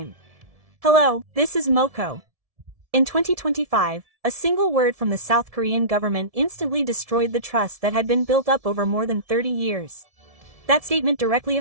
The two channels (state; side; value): late; left; 1.7 ms